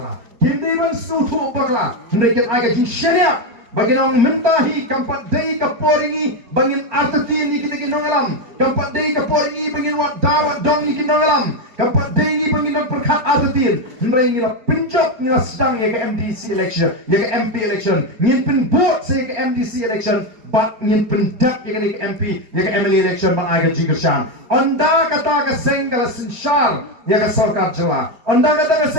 Kin day ban sutu bakla. Hendak agak jing syariah. Bagi nang mentahi kampat day kaporingi bangin artati ni kita kinong alam. Kampat day kaporingi bangin wat dawat dong ni kinong alam. Kampat day ni bangin nang perkat artati. Hendak ngira penjok ngira sedang ya ke MDC election, ya ke MP election. Ngin pen vote saya ke MDC election. Bat ngin pendak ya ke MP, ya ke MLA election bang agak jingkersan. Onda kata ke seng kala sinsyar ya ke sarkar jela. Onda kata ke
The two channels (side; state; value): left; late; 4.4 ms